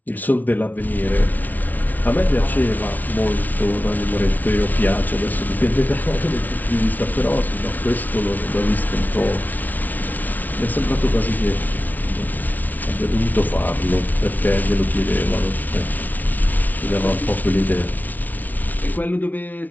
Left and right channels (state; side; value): late; right; 0.079 ms